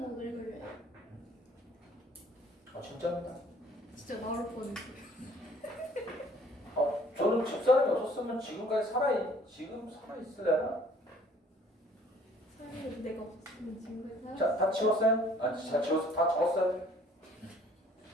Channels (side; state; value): both; normal; correlation 0.56